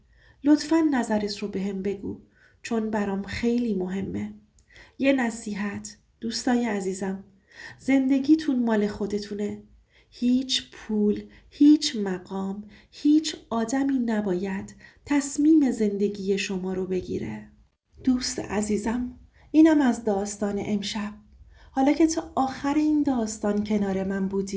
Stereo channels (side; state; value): both; identical; correlation 1.00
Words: لطفاً نظرت رو بهم بگو، چون برام خیلی مهمه. یه نصیحت دوستای عزیزم، زندگیتون مال خودتونه. هیچ پول، هیچ مقام، هیچ آدمی نباید تصمیم زندگی شما رو بگیره. دوست عزیزم، اینم از داستان امشب. حالا که تا آخر این داستان کنار من